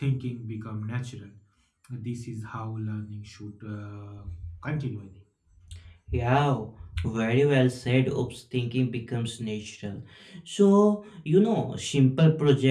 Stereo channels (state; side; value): identical; both; correlation 1.00